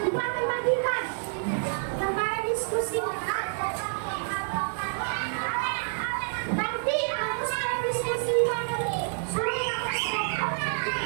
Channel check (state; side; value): silent; left; 56 dB below the other